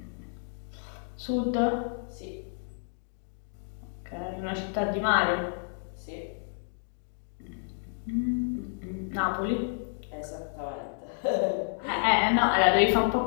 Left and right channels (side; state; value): right; silent; digital silence